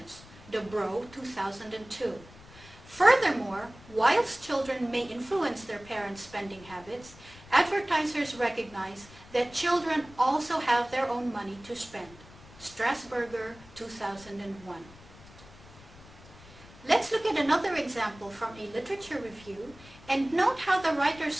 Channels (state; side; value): noise; left; rumble, 21 dB below the sound